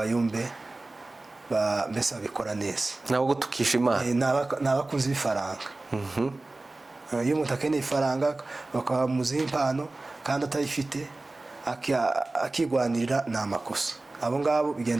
mbese babikora neza, ntabwo tukisha Imana. ni abakunzi b'ifaranga. iyo umuntu akeneye ifaranga bakamuziha impano kandi atayifite akigwanirira, ni amakosa. abo ngabo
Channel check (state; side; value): quieter; left; 3.0 dB